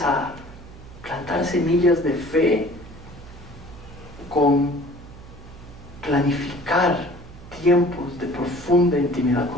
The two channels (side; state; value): right; noise; hum, 18 dB below the sound